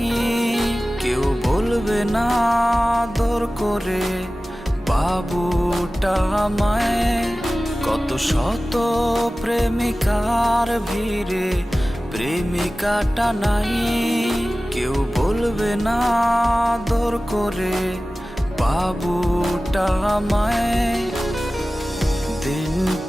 কেউ বলবে না আদর করে বাবুটা আমায়। কত শত প্রেমিকার ভিড়ে প্রেমিকাটা নাই, কেউ বলবে না আদর করে বাবুটা আমায়। দিন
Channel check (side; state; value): both; normal; correlation 0.96